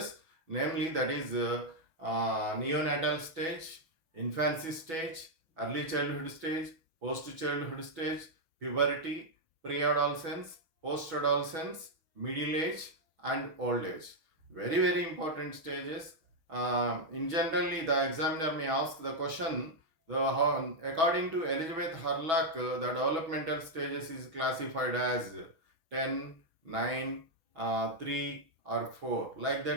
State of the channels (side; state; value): left; late; 6.2 ms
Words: namely, that is neonatal stage, infancy stage, early childhood stage, post childhood stage, puberty, pre-adolescence, post-adolescence, middle age, and old age. Very, very important stages. In generally, the examiner may ask the question, according to Elizabeth Hurlock, the developmental stages is classified as 10, 9, 3 or 4. Like